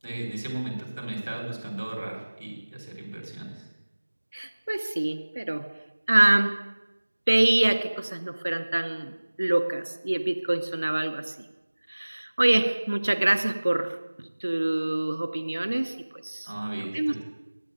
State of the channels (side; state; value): both; inverted; correlation -1.00